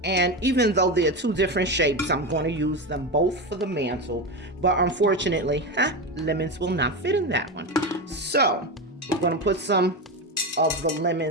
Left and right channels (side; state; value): both; normal; correlation 0.18